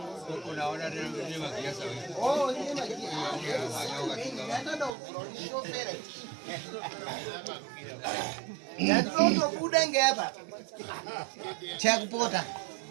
Unaona ni magiasa wewe. Oh, ni magiasa. Hata ndo shofera. Ndio kuda ngapa. Cha kupota.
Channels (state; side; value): drops out; left; at 4.9 s